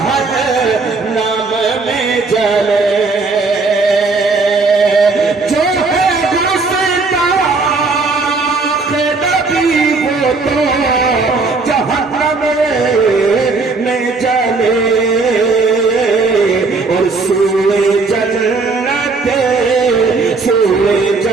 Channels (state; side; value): quieter; left; 4.0 dB